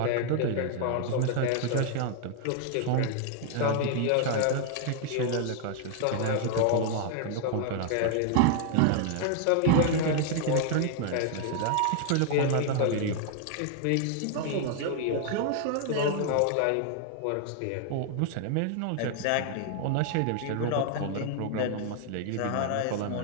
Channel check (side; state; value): both; different; correlation 0.00